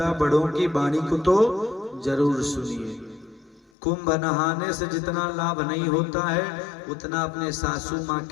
बड़ों की वाणी को तो जरूर सुनिए। कुंभ नहाने से जितना लाभ नहीं होता है उतना अपने सासू माँ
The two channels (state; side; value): drops out; right; at 3.7 s